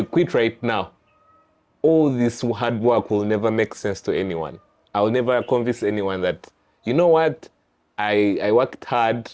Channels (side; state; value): both; identical; correlation 1.00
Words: quit right now, all this hard work will never make sense to anyone. I will never convince anyone that, you know what, I worked hard,